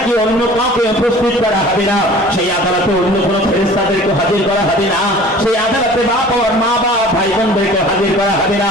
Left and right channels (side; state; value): both; normal; correlation 0.46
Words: অন্য কাউকে উপস্থিত করা হবে না, সেই আদালতে অন্য কোনো ফেরেশতাদেরকে হাজির করা হবে না, সেই আদালতে বাপ আর মা বাপ ভাই বোনদেরকে হাজির করা হবে না,